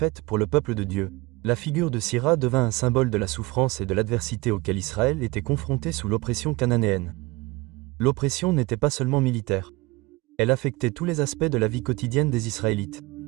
pour le peuple de Dieu. La figure de Sisera devint un symbole de la souffrance et de l'adversité auquel Israël était confronté sous l'oppression cananéenne. L'oppression n'était pas seulement militaire. Elle affectait tous les aspects de la vie quotidienne des Israélites.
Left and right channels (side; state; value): left; quieter; 22.0 dB